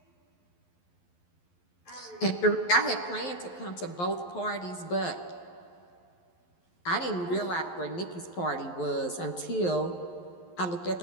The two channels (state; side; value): late; right; 11 ms